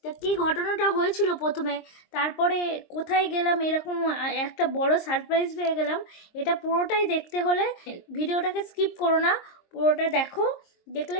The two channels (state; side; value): late; right; 23 ms